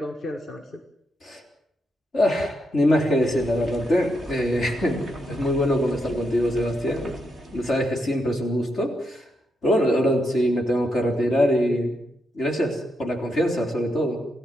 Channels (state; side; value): normal; both; correlation 0.81